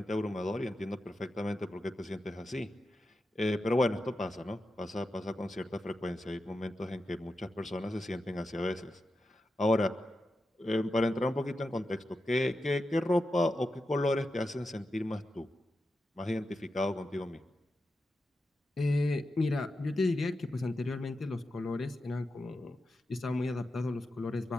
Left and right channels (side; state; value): both; normal; correlation 0.90